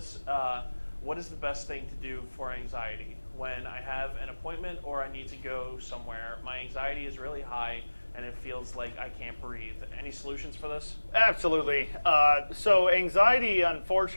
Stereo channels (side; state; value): both; inverted; correlation -1.00